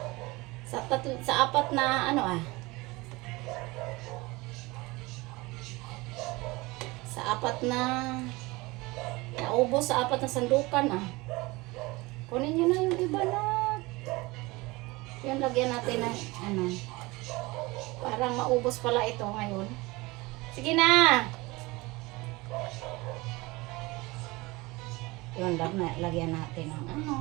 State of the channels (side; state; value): left; quieter; 22.7 dB